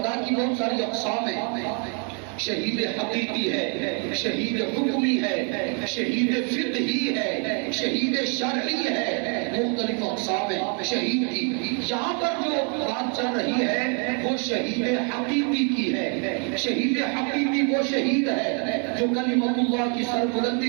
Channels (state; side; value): quieter; left; 38.5 dB